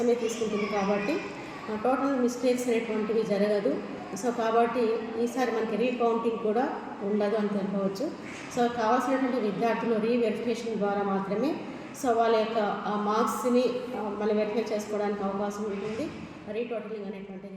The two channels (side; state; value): both; identical; correlation 1.00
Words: తీసుకుంటుంది కాబట్టి టోటల్ మిస్టేక్స్ అనేటువంటివి జరగదు. సో కాబట్టి ఈసారి మనకి రీకౌంటింగ్ కూడా ఉండదు అని తెలుపవచ్చు. సో కావాల్సినటువంటి విద్యార్థులు రీవెరిఫికేషన్ ద్వారా మాత్రమే సో వాళ్ళ యొక్క మార్క్స్ని మళ్ళీ వెరిఫై చేసుకోవడానికి అవకాశం ఉంటుంది. రీటోటలింగ్